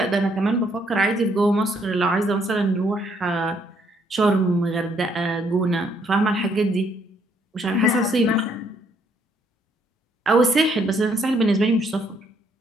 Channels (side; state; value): both; normal; correlation 0.69